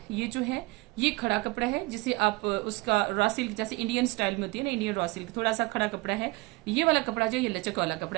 ये जो है ये खड़ा कपड़ा है जिसे आप उसका रॉ सिल्क जैसे इंडियन स्टाइल में होती है ना, इंडियन रॉ सिल्क थोड़ा सा खड़ा कपड़ा है। ये वाला कपड़ा जो ये लचक वाला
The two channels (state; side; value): quieter; left; 23.3 dB